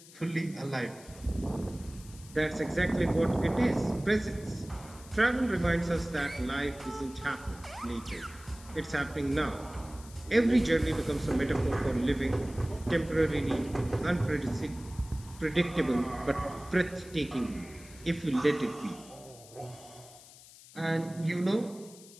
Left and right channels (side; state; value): left; noise; hiss, 20 dB below the sound